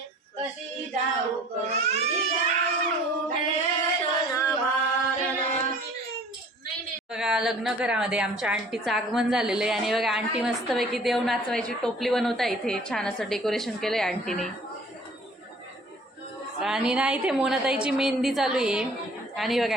बघा लग्न घरामध्ये आमच्या आंटीचं आगमन झालेलं आहे आणि बघा आंटी मस्तपैकी देव नाचवायची टोपली बनवता इथे छान असं डेकोरेशन केलंय आंटीने। आणि ना इथे मोनाताईची मेहंदी चालू आहे आणि बघा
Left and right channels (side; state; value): both; normal; correlation 0.50